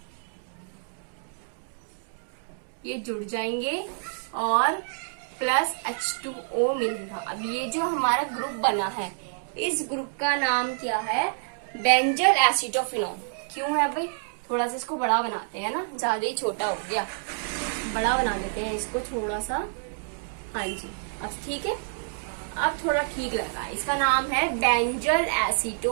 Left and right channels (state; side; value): silent; left; digital silence